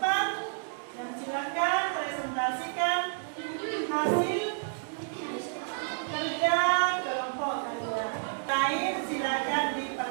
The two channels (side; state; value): left; silent; digital silence